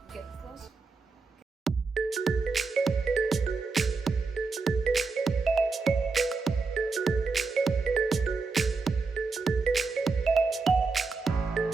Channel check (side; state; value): left; quieter; 4.3 dB